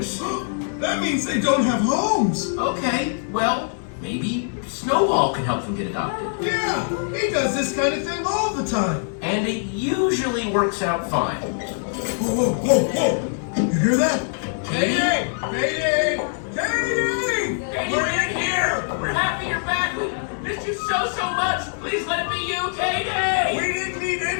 That means they don't have homes! Okay, well, maybe Snowball can help them get adopted. Yeah, he does this kind of thing all the time. And it usually works out fine. Whoa, whoa, whoa, whoa! You hear that? Mayday! Mayday! Mayday! We're in here! We're happy you're back! We missed you so much! Please let it be you, Katie! We didn't need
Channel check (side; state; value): right; silent; digital silence